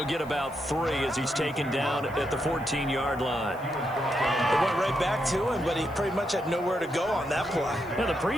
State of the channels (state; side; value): noise; left; hiss, 26 dB below the sound